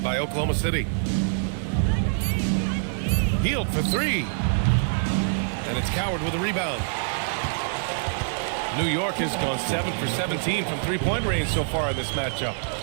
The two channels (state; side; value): silent; left; digital silence